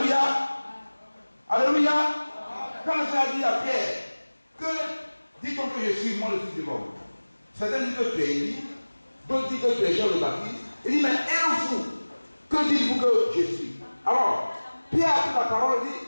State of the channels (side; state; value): both; inverted; correlation -1.00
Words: Alléluia. Quand le Seigneur dit à Pierre, que dit-on que je suis moi le Fils de l'homme? Certains disent que tu es Élie, d'autres disent que tu es Jean le Baptiste. Il dit, mais et vous, que dites-vous que je suis? Alors, Pierre a pris la parole et dit,